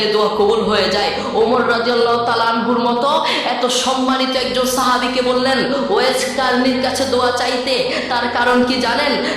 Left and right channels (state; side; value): identical; both; correlation 1.00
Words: দোয়া কবুল হয়ে যায়। ওমর রাদিয়াল্লাহু তাআলা আনহুর মতো এত সম্মানিত একজন সাহাবীকে বললেন ওয়াইস কারনীর কাছে দোয়া চাইতে। তার কারণ কি জানেন?